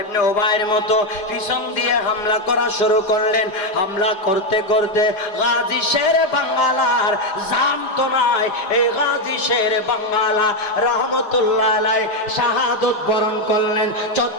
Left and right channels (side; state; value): right; late; 4.9 ms